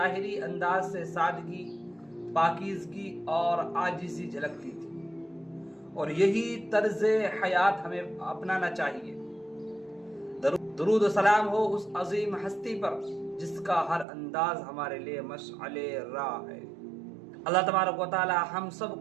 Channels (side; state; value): left; drops out; at 14.1 s